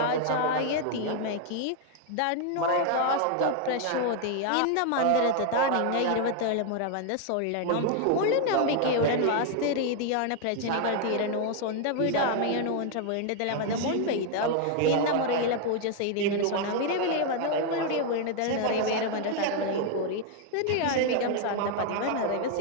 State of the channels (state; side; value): different; both; correlation 0.00